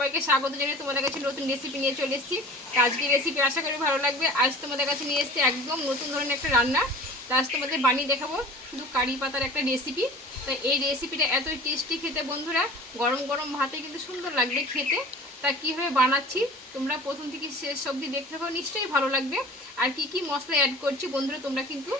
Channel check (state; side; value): normal; both; correlation 0.42